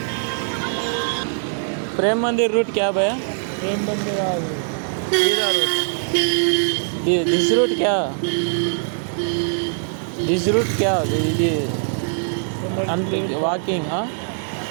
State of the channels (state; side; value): silent; left; digital silence